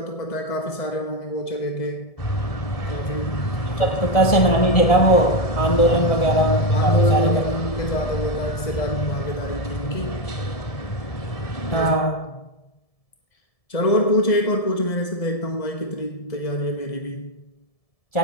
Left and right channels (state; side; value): late; right; 1.7 ms